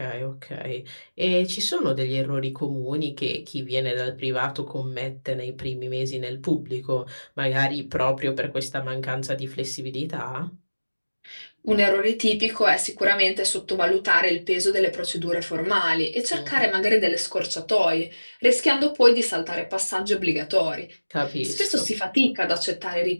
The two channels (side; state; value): both; inverted; correlation -1.00